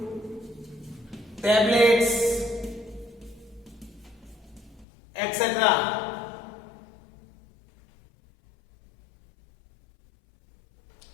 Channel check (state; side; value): drops out; right; at 4.9 s